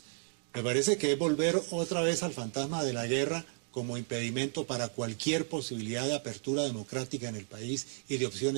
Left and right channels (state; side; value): silent; left; 56 dB below the other